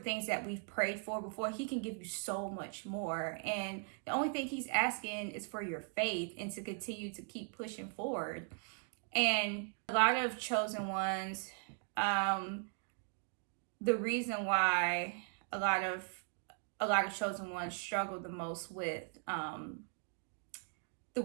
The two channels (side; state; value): left; quieter; 39.5 dB